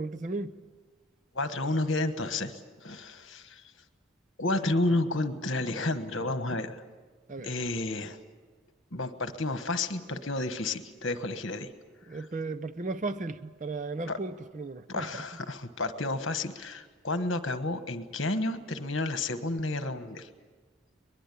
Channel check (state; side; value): normal; both; correlation 0.44